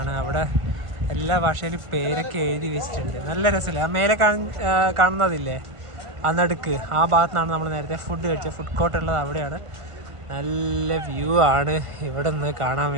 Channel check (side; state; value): left; late; 1.5 ms